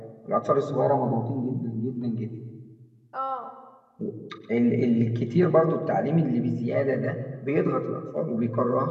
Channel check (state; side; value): identical; both; correlation 1.00